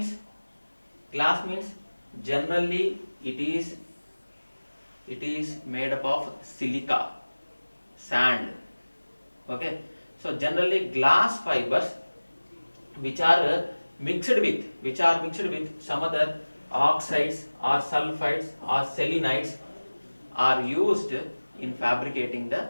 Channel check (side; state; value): both; inverted; correlation -1.00